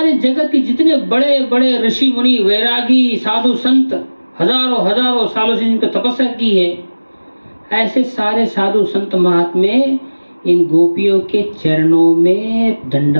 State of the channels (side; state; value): both; inverted; correlation -1.00